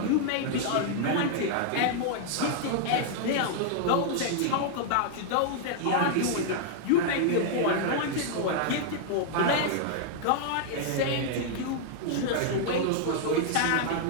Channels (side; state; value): both; different; correlation -0.01